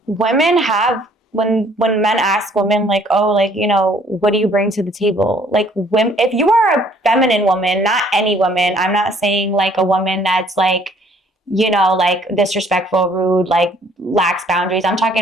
women have, when men ask women, what do you bring to the table? If you are a feminine woman, not any woman, I'm not saying a woman that's disrespectful, rude, lacks boundaries. I'm talking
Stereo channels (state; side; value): normal; both; correlation 0.60